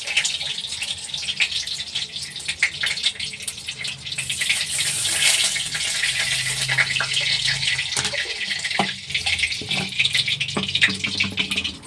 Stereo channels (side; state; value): both; identical; correlation 1.00